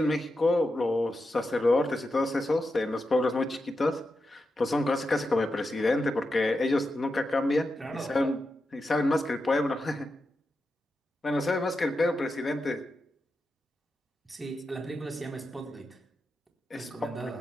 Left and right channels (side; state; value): both; normal; correlation 0.89